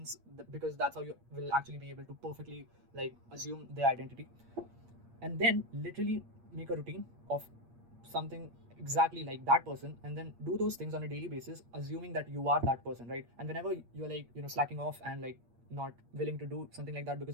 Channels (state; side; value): late; left; 8.5 ms